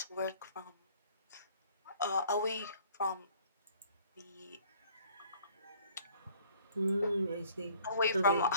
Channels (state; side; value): inverted; both; correlation -0.57